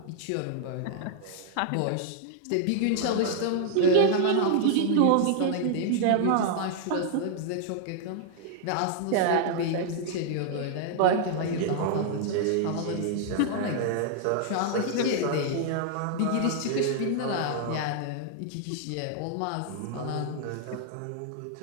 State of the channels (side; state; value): both; different; correlation 0.00